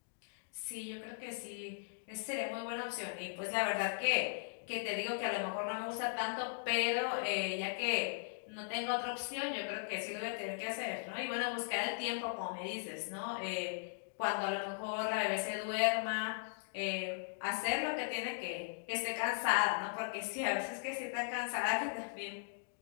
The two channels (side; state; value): right; silent; digital silence